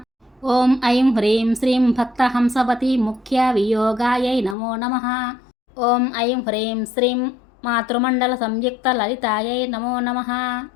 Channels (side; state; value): right; drops out; at 4.5 s